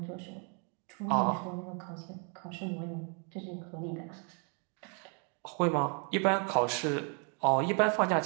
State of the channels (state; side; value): quieter; left; 39.1 dB